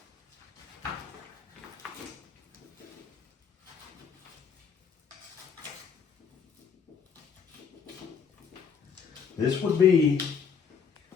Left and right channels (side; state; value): right; quieter; 6.5 dB